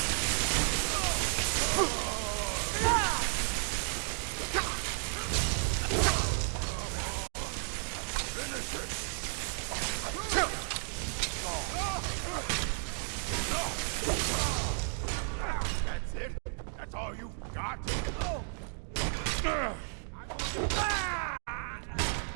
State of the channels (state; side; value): silent; left; 56 dB below the other